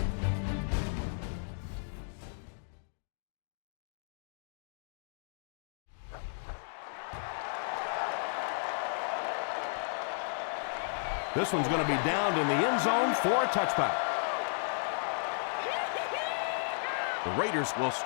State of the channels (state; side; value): silent; right; digital silence